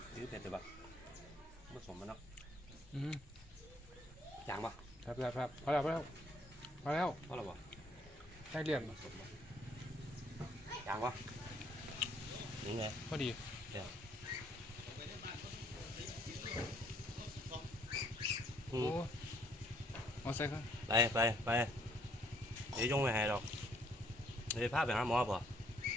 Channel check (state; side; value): normal; both; correlation 0.65